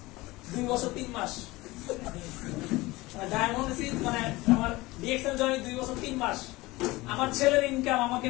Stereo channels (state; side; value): quieter; right; 20.6 dB